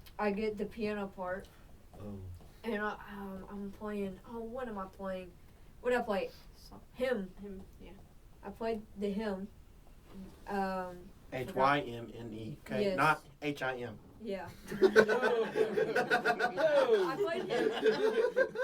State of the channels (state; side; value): identical; both; correlation 1.00